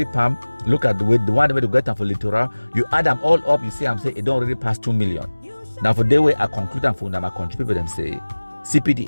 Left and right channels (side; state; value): both; inverted; correlation -1.00